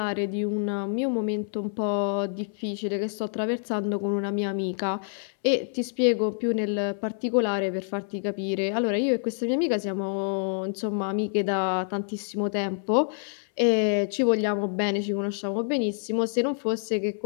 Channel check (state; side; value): silent; right; 60 dB below the other